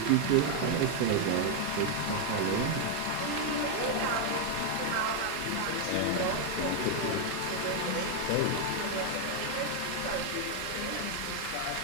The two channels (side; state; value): both; different; correlation 0.00